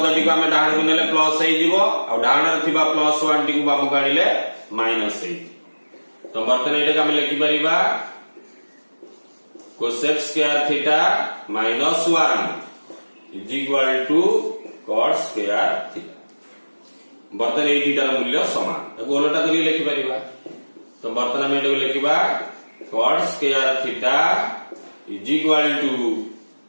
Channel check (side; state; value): both; inverted; correlation -1.00